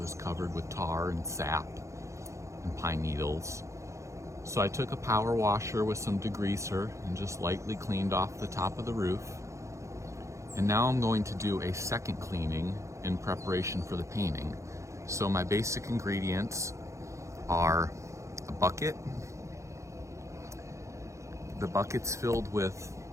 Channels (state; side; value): late; left; 0.15 ms